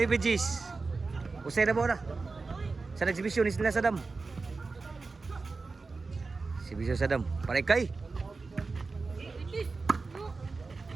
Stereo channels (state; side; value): quieter; left; 4.0 dB